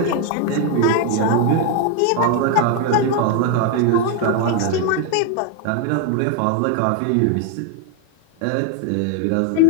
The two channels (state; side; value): different; both; correlation 0.01